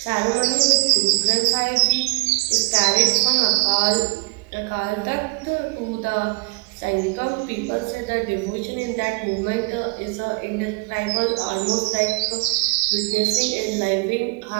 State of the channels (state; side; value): quieter; left; 25.7 dB